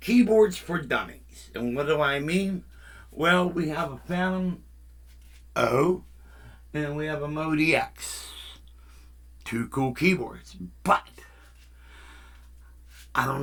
Keyboards for Dummies. And what do I mean? Well, we have a Phantom O and we have a Mode EX. Two cool keyboards. But I don't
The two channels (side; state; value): both; identical; correlation 1.00